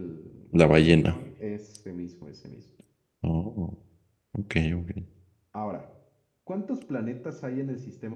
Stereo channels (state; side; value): identical; both; correlation 1.00